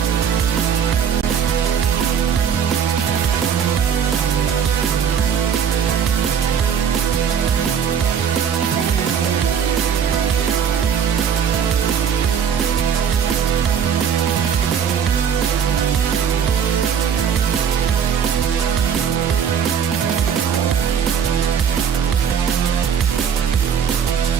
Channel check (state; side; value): quieter; left; 7.7 dB